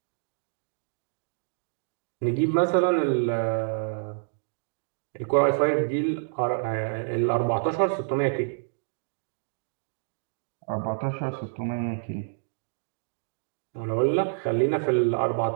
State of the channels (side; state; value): left; silent; digital silence